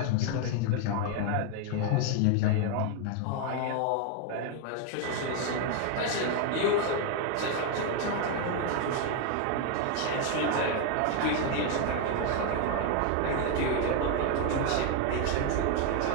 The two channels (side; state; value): both; different; correlation 0.01